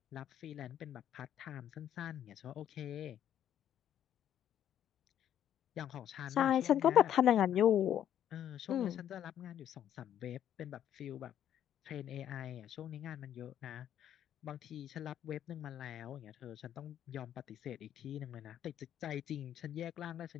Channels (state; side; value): quieter; right; 10.5 dB